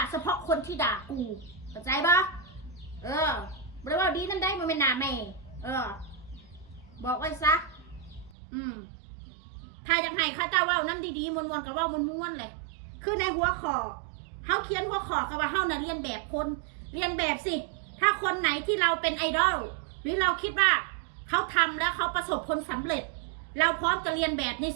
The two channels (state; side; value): drops out; left; at 8.3 s